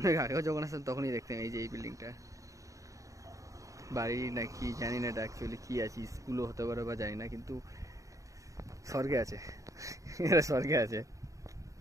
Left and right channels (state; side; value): late; left; 0.16 ms